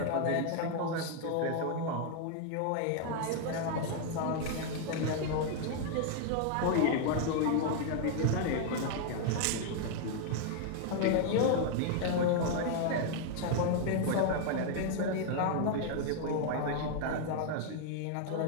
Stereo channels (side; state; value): both; different; correlation 0.00